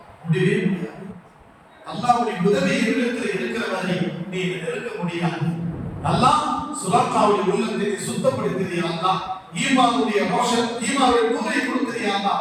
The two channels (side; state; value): both; identical; correlation 1.00